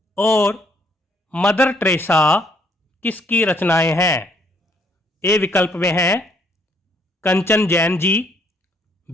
और मदर टेरेसा किसकी रचनाएं हैं? ए विकल्प में है कंचन जैन जी,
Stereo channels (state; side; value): normal; both; correlation 0.67